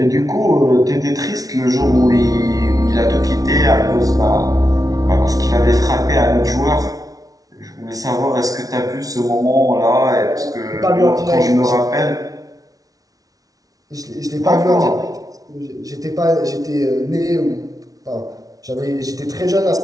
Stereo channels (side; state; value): left; late; 0.18 ms